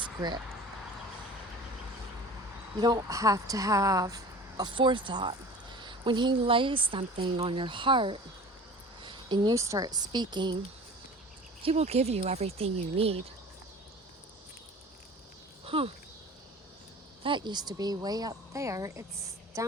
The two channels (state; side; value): normal; both; correlation 0.41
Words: You don't have to have a forethought. When He lays something on your heart and you start speaking, He will give you everything you need. That used to be way up there. It's